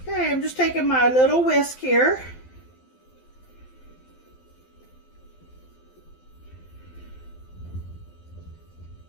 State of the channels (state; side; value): late; right; 12 ms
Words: Okay, I'm just taking my little whisk here.